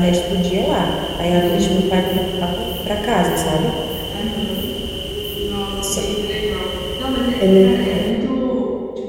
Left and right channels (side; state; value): both; identical; correlation 1.00